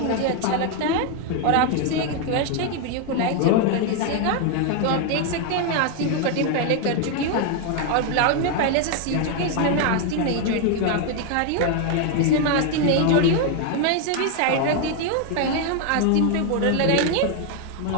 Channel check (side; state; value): both; different; correlation 0.01